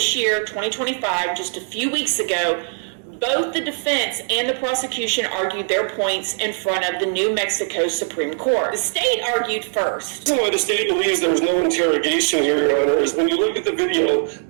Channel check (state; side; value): silent; left; digital silence